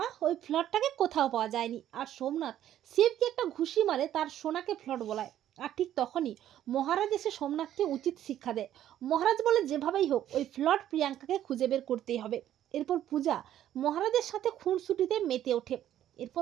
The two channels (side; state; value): left; quieter; 11.7 dB